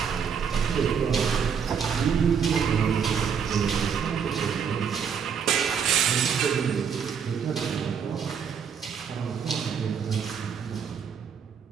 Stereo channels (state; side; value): quieter; left; 7.0 dB